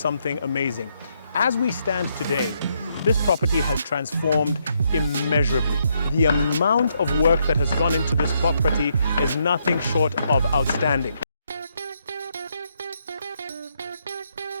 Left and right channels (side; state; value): both; inverted; correlation -0.76